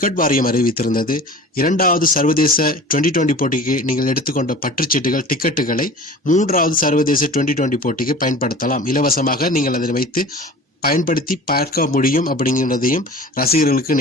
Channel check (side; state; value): both; normal; correlation 0.40